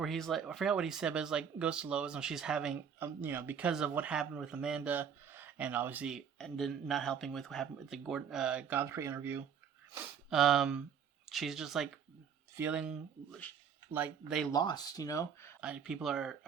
he's like, I forgot what he said, but it's like goes to Lois and she's having, because of what happened with Amanda, and obviously, and then not helping with what happened with the Godfrey interview. She's just like feeling like they lost. People are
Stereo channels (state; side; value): quieter; left; 7.4 dB